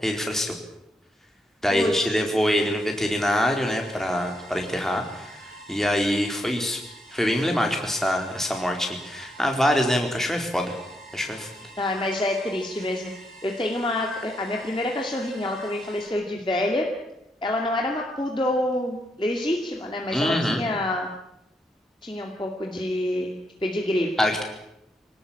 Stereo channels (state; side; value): normal; both; correlation 0.78